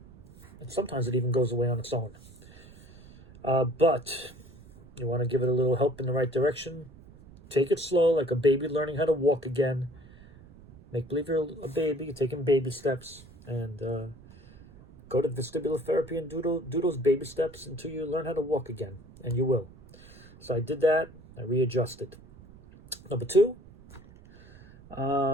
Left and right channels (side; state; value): right; noise; rumble, 21 dB below the sound